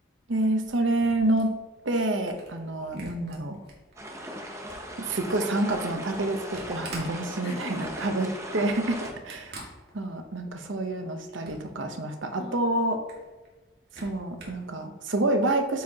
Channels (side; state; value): both; normal; correlation 0.30